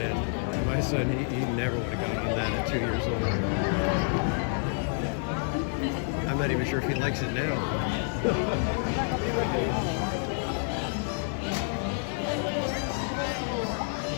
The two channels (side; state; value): right; silent; 59 dB below the other